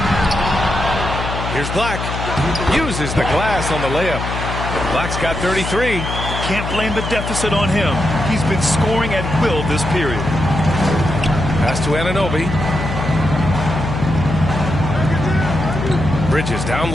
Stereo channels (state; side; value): noise; left; hum, 5 dB below the sound